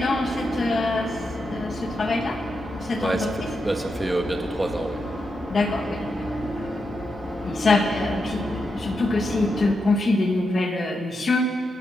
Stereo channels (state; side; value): normal; both; correlation 0.85